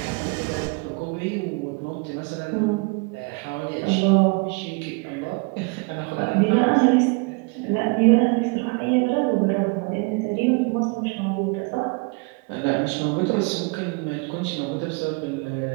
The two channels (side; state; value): left; quieter; 30.2 dB